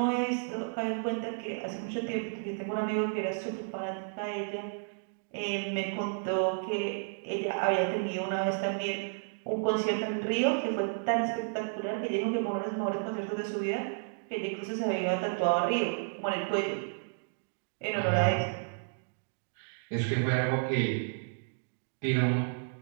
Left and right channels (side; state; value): left; silent; digital silence